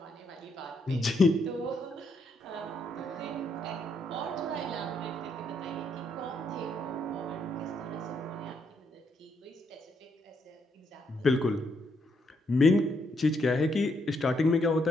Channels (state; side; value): normal; both; correlation 0.76